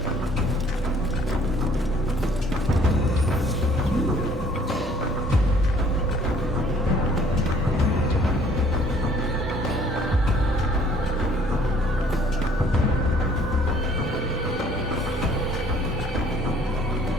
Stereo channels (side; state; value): both; normal; correlation 0.58